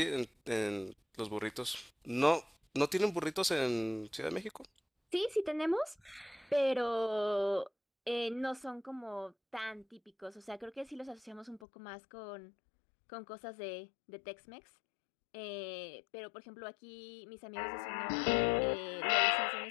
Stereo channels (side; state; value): right; drops out; at 11.6 s